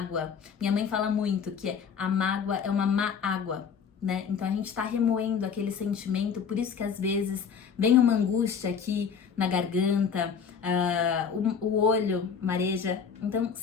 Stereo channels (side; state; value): right; quieter; 6.7 dB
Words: Minha mãe fala muito que a mágoa é uma má água. né? Então a gente tá remoendo aquele sentimento, por isso que às vezes vem uma angústia aqui na garganta, o olho mareja. Então